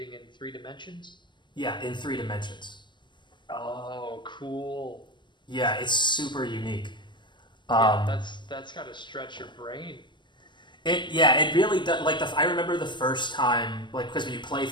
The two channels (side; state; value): right; late; 0.22 ms